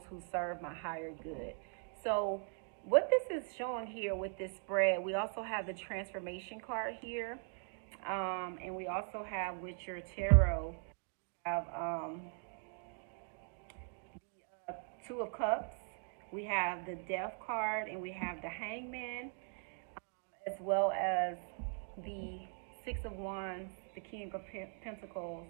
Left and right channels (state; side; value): silent; left; 51 dB below the other